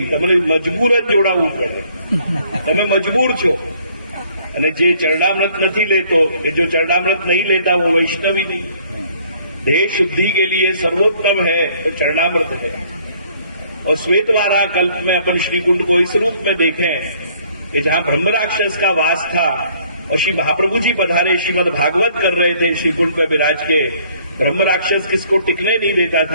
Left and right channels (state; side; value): inverted; both; correlation -0.61